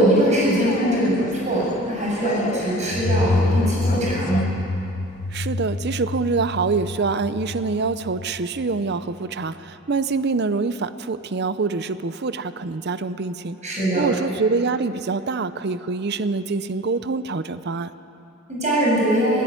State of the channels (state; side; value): normal; both; correlation 0.37